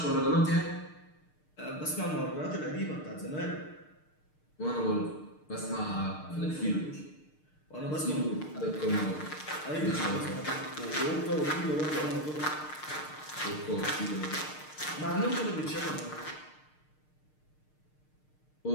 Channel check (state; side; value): late; right; 6.6 ms